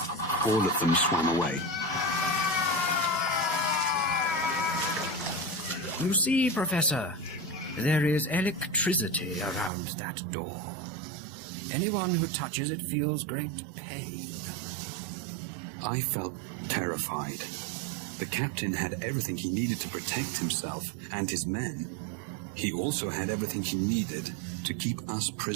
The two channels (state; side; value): drops out; left; at 9.7 s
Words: all of them swam away. You see, Professor, there is electricity around that door. Anyone who touches it feels great pain. I felt terrified. The captain had everything he needed to protect himself and his men. He also had everything he needed to keep us